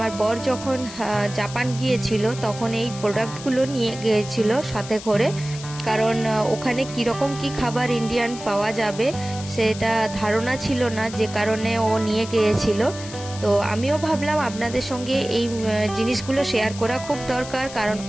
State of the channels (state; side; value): noise; left; hiss, 13 dB below the sound